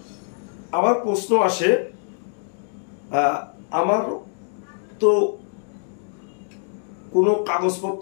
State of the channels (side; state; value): right; silent; digital silence